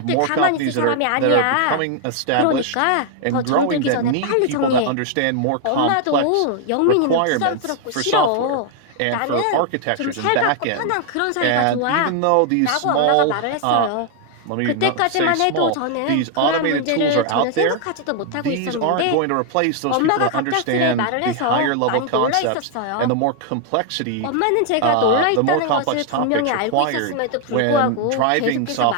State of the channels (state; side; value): different; both; correlation 0.00